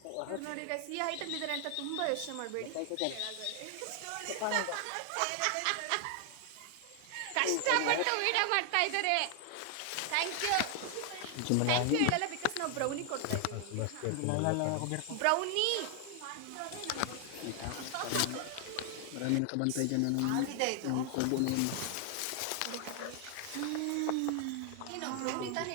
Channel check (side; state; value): both; different; correlation 0.00